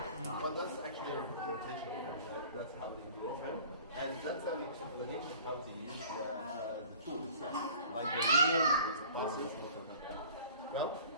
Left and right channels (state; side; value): inverted; both; correlation -0.47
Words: but that's actually a representation. That's how they draw him, and that's an explanation how they use the tools, like the wheel. Well,